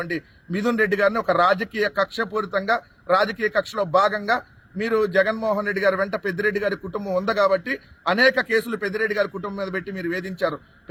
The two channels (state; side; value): identical; both; correlation 1.00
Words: మిథున్ రెడ్డి గారిని ఒక రాజకీయ కక్షపూరితంగా రాజకీయ కక్షలో భాగంగా మీరు జగన్మోహన్ రెడ్డి గారి వెంట పెద్దిరెడ్డి గారి కుటుంబం ఉంది కాబట్టి అనేక కేసులు పెద్దిరెడ్డి గారి కుటుంబం మీద పెట్టి మీరు వేధించారు.